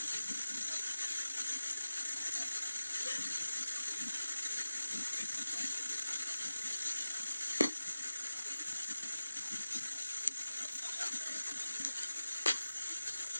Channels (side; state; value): both; inverted; correlation -0.94